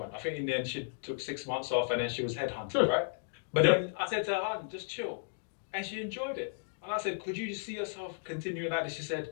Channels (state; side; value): silent; right; digital silence